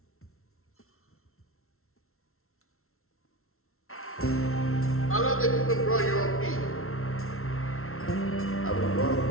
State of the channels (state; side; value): late; right; 0.62 ms